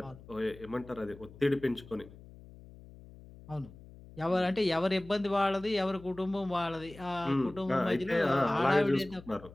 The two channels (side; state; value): left; noise; hum, 19 dB below the sound